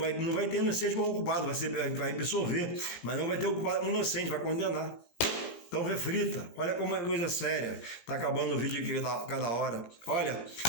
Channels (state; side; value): late; right; 17 ms